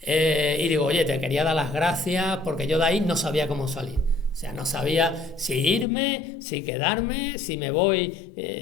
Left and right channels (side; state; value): right; drops out; at 5.9 s